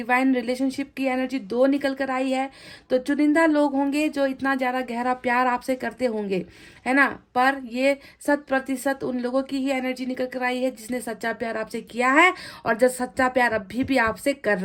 relationship की एनर्जी 2 निकल कर आई है। तो चुनिंदा लोग होंगे जो इतना ज़्यादा गहरा प्यार आपसे करते होंगे, है ना। पर ये 100% उन लोगों की ही एनर्जी निकल कर आई है जिसने सच्चा प्यार आपसे किया है, और जो सच्चा प्यार अभी भी आपसे कर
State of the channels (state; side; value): identical; both; correlation 1.00